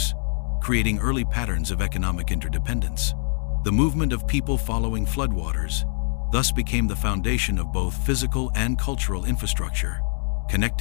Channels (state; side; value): silent; right; 62 dB below the other